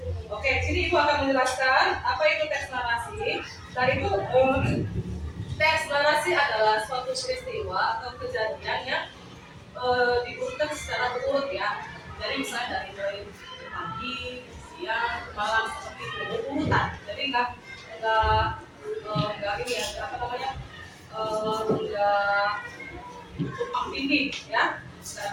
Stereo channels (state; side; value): identical; both; correlation 1.00